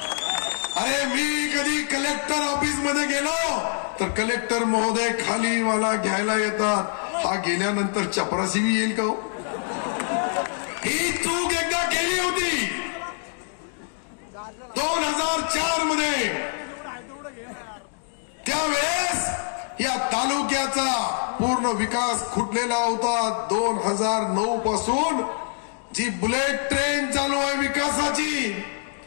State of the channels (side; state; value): right; silent; 62 dB below the other